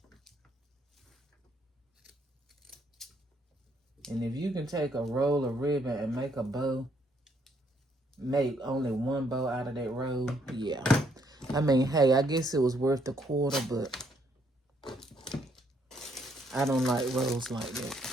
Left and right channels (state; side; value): normal; both; correlation 0.70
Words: And if you can take a roll of ribbon and make a bow, make only one bow out of that roll, yeah. I mean, hey, I guess it was worth the quarter, but I don't like rolls like that.